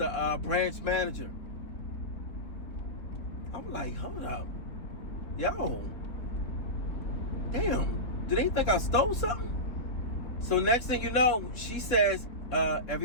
branch manager. I'm like, hold up. Yo, damn, do they think I stole something? So next thing you know, she says,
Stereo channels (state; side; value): late; right; 4.0 ms